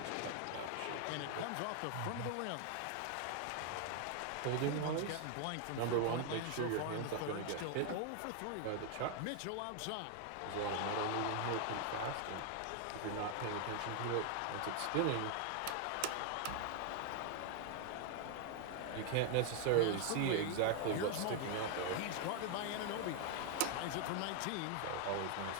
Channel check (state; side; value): different; both; correlation 0.00